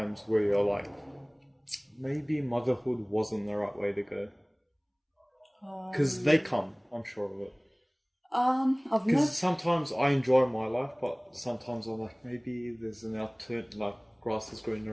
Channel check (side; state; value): both; identical; correlation 1.00